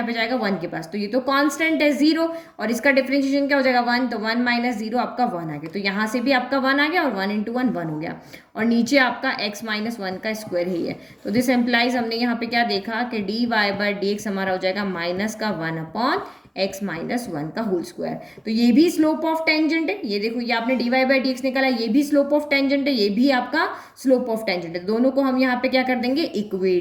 पे जाएगा 1 के पास। तो ये तो कांस्टेंट है 0 और इसका डिफरेंशिएशन क्या हो जाएगा, 1। तो 1 माइनस 0 आपका 1 आ गया। तो यहाँ से भी आपका 1 आ गया और 1 इंटू 1 1 हो गया और नीचे आपका x माइनस 1 का स्क्वायर ही है। तो दिस एम्प्लाइज, हमने यहाँ पे क्या देखा कि dy/dx हमारा हो जाएगा माइनस का 1 अपॉन x माइनस 1 का होल स्क्वायर। तो ये भी स्लोप ऑफ टेंजेंट है। ये देखो, ये आपने dy/dx निकाला, ये भी स्लोप ऑफ टेंजेंट है, ये भी आपका स्लोप ऑफ टेंजेंट है। दोनों को हम यहाँ पे क्या कर देंगे,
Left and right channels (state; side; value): identical; both; correlation 1.00